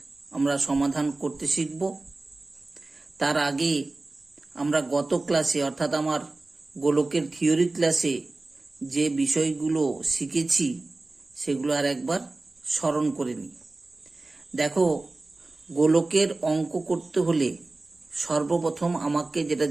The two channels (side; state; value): left; quieter; 3.2 dB